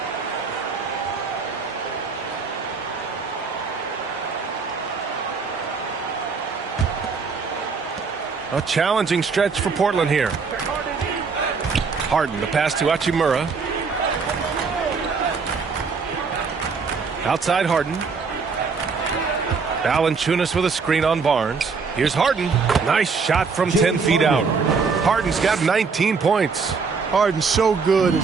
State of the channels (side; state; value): left; quieter; 5.0 dB